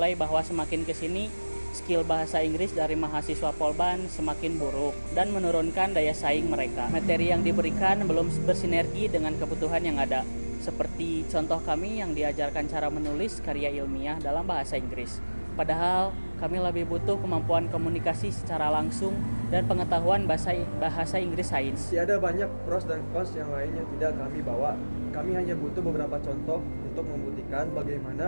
bahwa semakin kesini skill bahasa Inggris dari mahasiswa Polban semakin buruk dan menurunkan daya saing mereka. Materi yang diberikan belum bersinergi dengan kebutuhan yang ada. Seperti contoh kami yang diajarkan cara menulis karya ilmiah dalam bahasa Inggris. Padahal kami lebih butuh kemampuan komunikasi secara langsung dan pengetahuan bahasa Inggris sains. Ada banyak pros dan cons yang lain yang tidak kami bawa. Kami hanya butuh beberapa contoh untuk membuktikan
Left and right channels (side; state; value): both; inverted; correlation -1.00